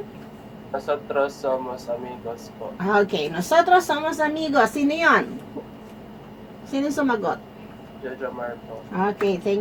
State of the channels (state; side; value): identical; both; correlation 1.00